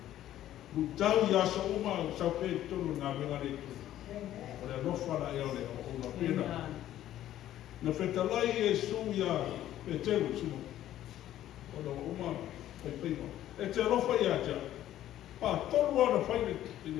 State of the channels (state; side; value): quieter; right; 12.7 dB